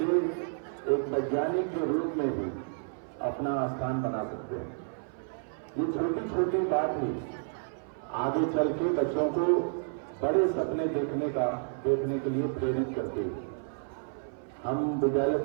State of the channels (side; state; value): left; silent; 56 dB below the other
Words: एक वैज्ञानिक के रूप में भी अपना स्थान बना सकते हैं। ये छोटी छोटी बात ही आगे चल के बच्चों को बड़े सपने देखने के लिए प्रेरित करती है। हम विद्यालय